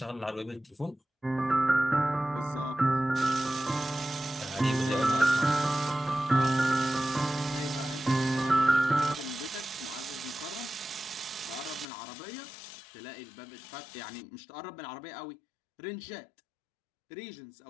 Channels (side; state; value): right; drops out; at 11.9 s